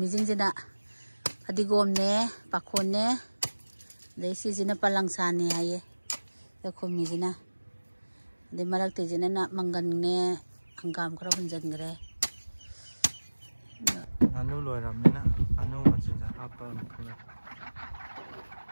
jing jina adigom ne pakhon ne dei si jina palangsa ne aye to khumi jina de marak te jina na mangan ne angam kra hunjan gre anu loi ram ne na anu ma chin ja apa khla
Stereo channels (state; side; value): inverted; both; correlation -1.00